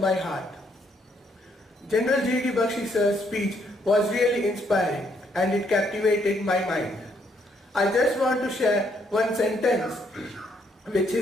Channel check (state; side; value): normal; both; correlation 0.71